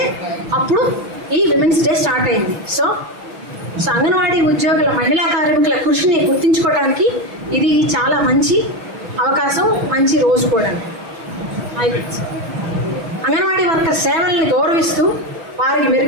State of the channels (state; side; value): late; left; 6.1 ms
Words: అప్పుడు ఈ విమెన్స్ డే స్టార్ట్ అయింది. సో అంగన్వాడీ ఉద్యోగుల, మహిళా కార్మికుల కృషిని గుర్తించుకోవడానికి ఇది చాలా మంచి అవకాశం, మంచి రోజు కూడా. అంగన్వాడీ వర్కర్ సేవల్ని గౌరవిస్తూ వారికి